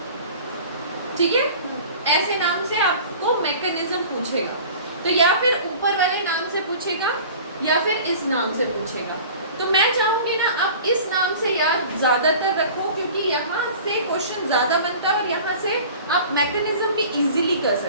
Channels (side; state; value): both; inverted; correlation -0.42